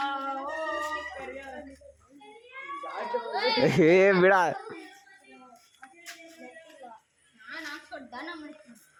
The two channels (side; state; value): both; identical; correlation 1.00